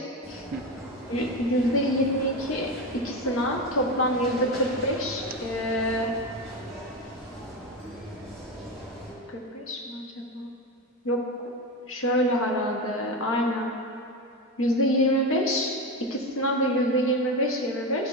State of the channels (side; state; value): both; normal; correlation 0.18